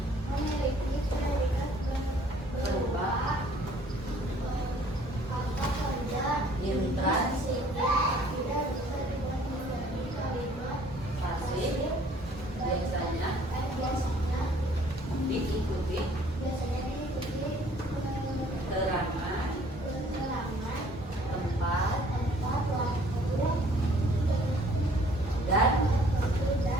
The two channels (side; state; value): both; normal; correlation 0.57